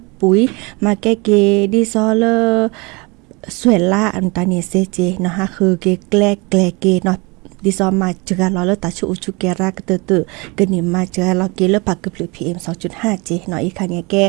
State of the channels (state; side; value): quieter; left; 27.5 dB